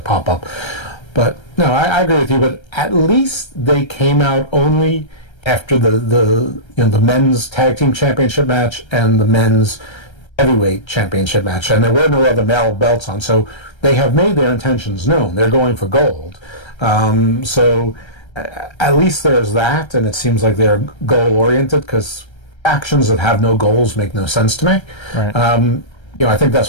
up, but no, I agree with you. But at least they came out only after the men's tag team championship match and the men's heavyweight championship match, and there were no other male belts on, so they have made their intentions known. They're going for gold. So at least there's that, and it seems like they're goal oriented because actions that have no goals make no sense to me. right, I think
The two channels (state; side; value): late; right; 1.3 ms